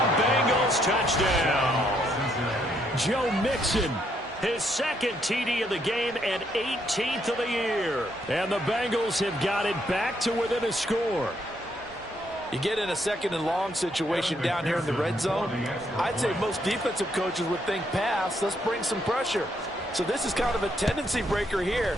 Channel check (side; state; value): both; normal; correlation 0.73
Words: Bengals touchdown. Joe Mixon, his 2nd TD of the game and 18th of the year. And the Bengals have got it back to within a score. You get in a 2nd and long situation down here in the red zone. I'd say most defensive coaches would think pass. Let's bring some pressure. So this is kind of a tendency breaker here